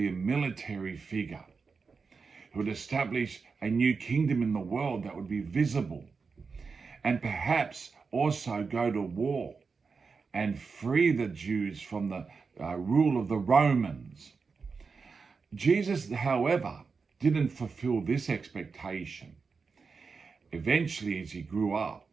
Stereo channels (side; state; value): left; quieter; 4.9 dB